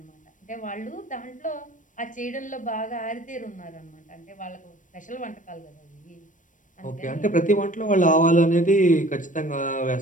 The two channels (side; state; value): right; late; 0.37 ms